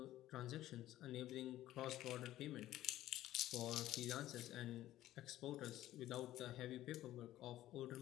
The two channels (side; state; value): right; quieter; 14.3 dB